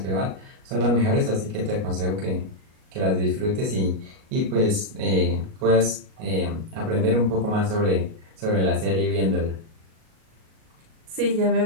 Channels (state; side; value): late; left; 38 ms